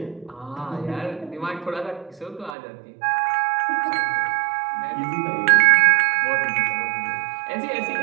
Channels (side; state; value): left; drops out; at 2.6 s